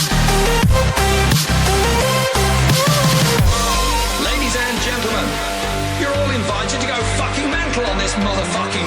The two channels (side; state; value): both; identical; correlation 1.00